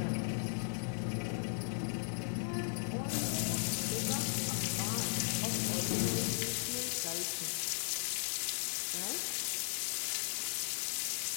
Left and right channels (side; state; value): right; silent; digital silence